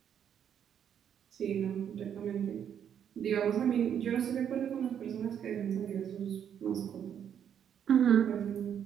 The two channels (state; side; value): quieter; left; 8.8 dB